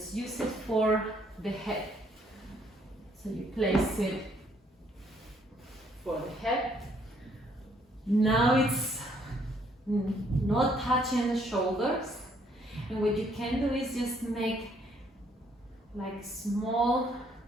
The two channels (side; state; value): both; normal; correlation 0.67